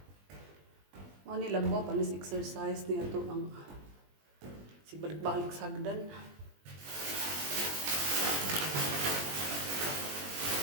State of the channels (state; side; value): late; left; 20 ms